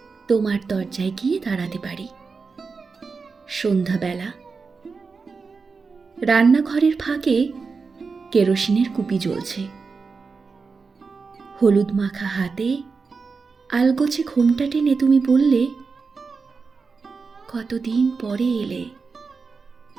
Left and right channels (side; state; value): left; quieter; 4.8 dB